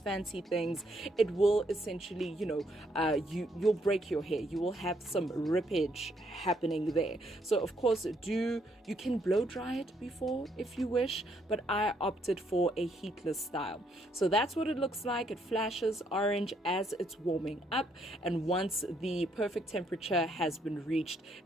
fancy things, it will essentially, you'll break your hair. You will have some rippage happening there. So of course, you can blow dry it before if you wish, but I opted for a heatless style. So that's what it looks like. It flashes orange as it's warming up, and once the perfect temperature has been reached,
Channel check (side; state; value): both; normal; correlation 0.72